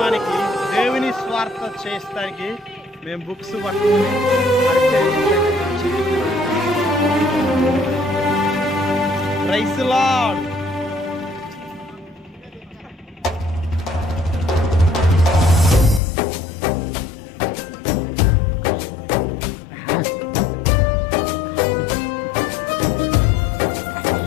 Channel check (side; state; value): right; drops out; at 16.0 s